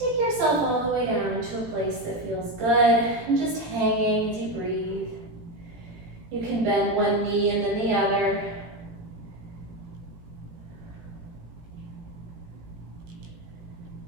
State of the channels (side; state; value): left; late; 17 ms